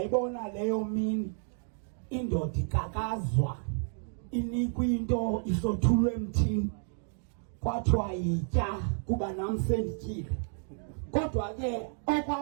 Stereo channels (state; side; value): silent; left; 57 dB below the other